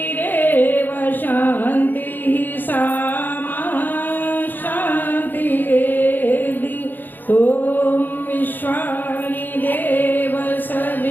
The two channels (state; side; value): late; right; 0.088 ms